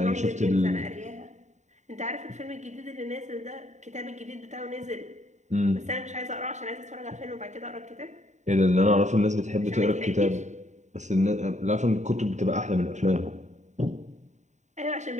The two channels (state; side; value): late; left; 0.34 ms